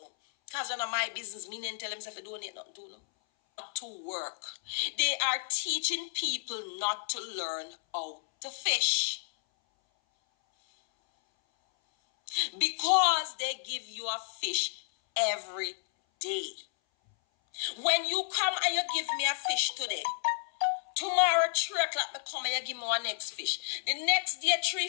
Cause none of my business, me didn't tell them if I donate nothing to no. To work. They are teaching people not to learn how to fish. Because they give you a fish every day. When you come and you give me a fish today, tomorrow 3 o'clock me come and you give me one next fish. The next day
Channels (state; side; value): silent; right; 57 dB below the other